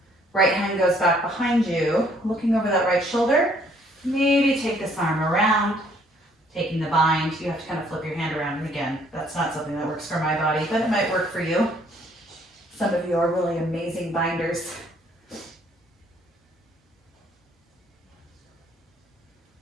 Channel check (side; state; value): both; normal; correlation 0.63